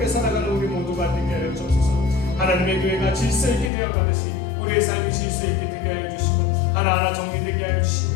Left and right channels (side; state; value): right; drops out; at 3.7 s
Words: 살아가는 우리 모두가 되게 하여 주옵소서. 하나님의 교회가 질서 있게 되어가듯이 우리의 삶이 질서 있게 되게 하여 주시고 하나하나 정리되게 하여